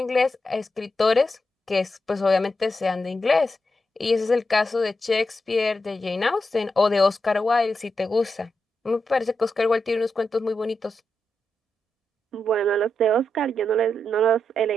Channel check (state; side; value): normal; both; correlation 0.86